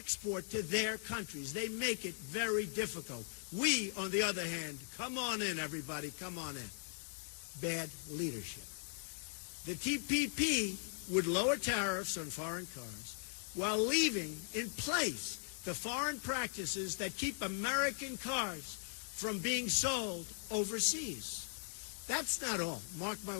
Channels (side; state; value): right; silent; 52 dB below the other